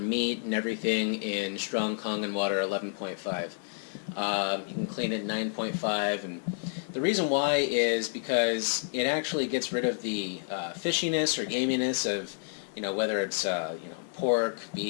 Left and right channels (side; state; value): right; silent; digital silence